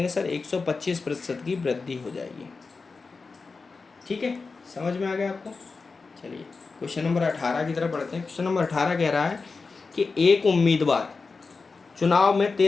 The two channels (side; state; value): right; quieter; 4.3 dB